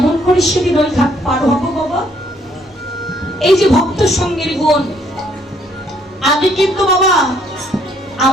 করে সেদিন ওই ঘাট পার হবো বাবা? এই যে ভক্ত সঙ্গের গুণ, আগে কিন্তু বাবা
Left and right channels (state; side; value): normal; both; correlation 0.67